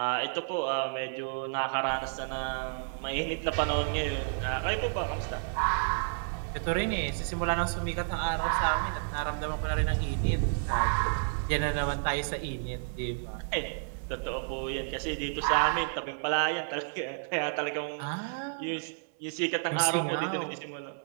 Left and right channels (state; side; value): silent; left; 57 dB below the other